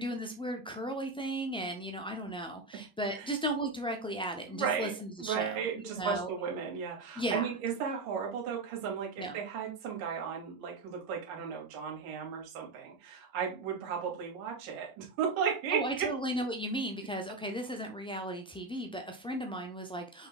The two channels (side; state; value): left; quieter; 3.7 dB